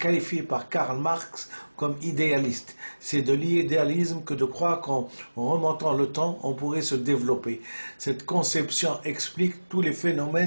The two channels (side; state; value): both; inverted; correlation -1.00